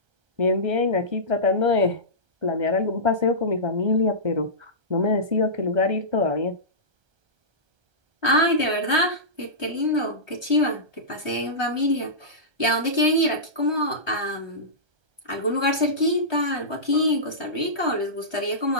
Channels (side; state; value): left; late; 1.3 ms